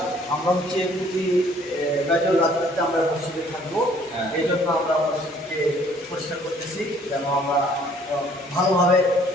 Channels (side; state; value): both; normal; correlation 0.59